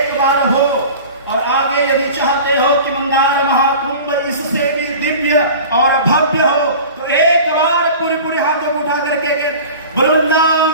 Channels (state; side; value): inverted; both; correlation -0.39